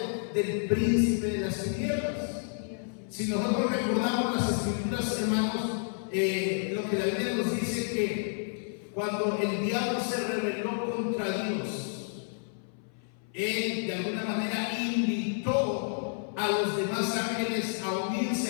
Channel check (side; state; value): right; silent; 57 dB below the other